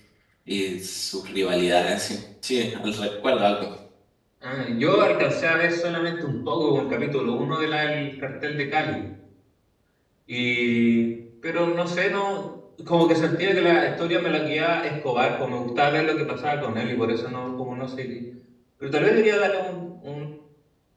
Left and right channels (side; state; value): both; identical; correlation 1.00